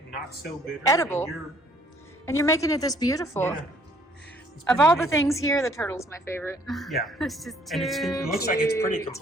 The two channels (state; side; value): normal; both; correlation 0.61